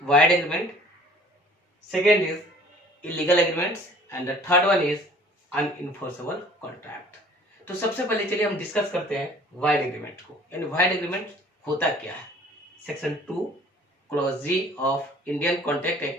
wide agreement, second is illegal agreements and the third one is unenforceable contract. तो सबसे पहले चलिए हम डिस्कस करते हैं वाइड एग्रीमेंट को। यानी वाइड एग्रीमेंट होता क्या है। Section 2 clause ji of Indian contract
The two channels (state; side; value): normal; both; correlation 0.52